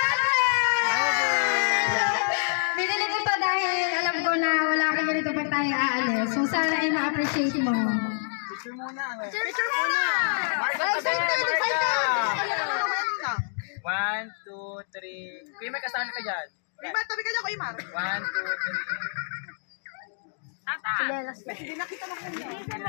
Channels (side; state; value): right; silent; digital silence